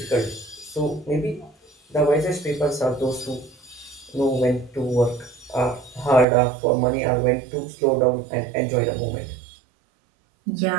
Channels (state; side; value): drops out; left; at 6.2 s